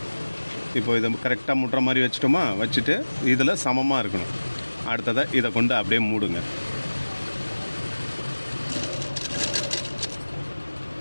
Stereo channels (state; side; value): inverted; both; correlation -1.00